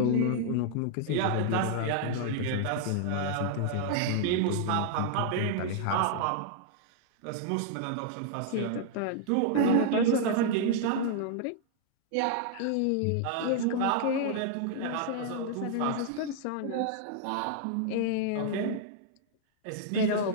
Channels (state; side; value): different; both; correlation -0.01